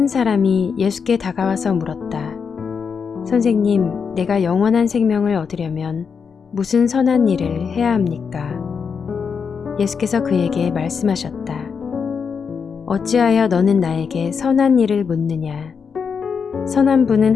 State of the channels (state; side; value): quieter; right; 6.1 dB